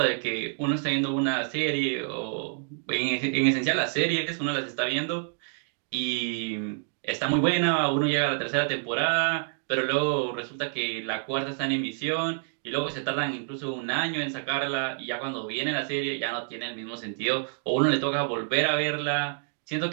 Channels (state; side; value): silent; left; digital silence